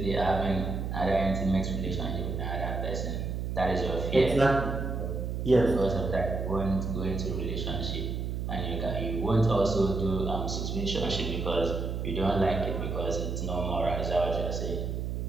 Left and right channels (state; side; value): noise; right; hum, 3 dB below the sound